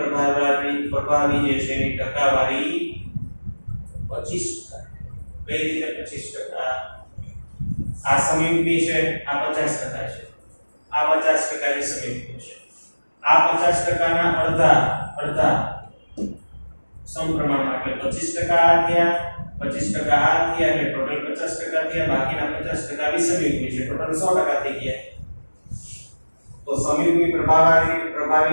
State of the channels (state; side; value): inverted; both; correlation -1.00